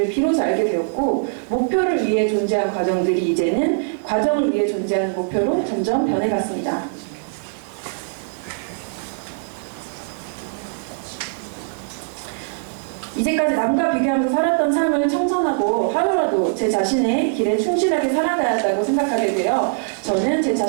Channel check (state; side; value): silent; left; digital silence